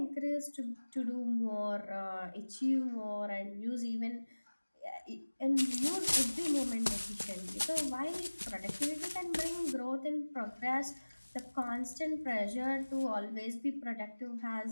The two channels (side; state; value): both; inverted; correlation -1.00